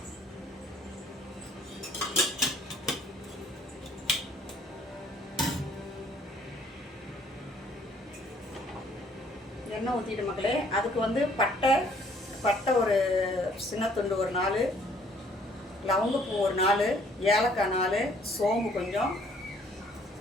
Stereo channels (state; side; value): normal; both; correlation 0.61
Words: எண்ணெய் ஊற்றிட்டு மக்களே, அதுக்கு வந்து பட்டை ஒரு சின்ன துண்டு ஒரு 4, லவங்கப்பூ ஒரு 4, ஏலக்காய் 4, சோம்பு கொஞ்சம்,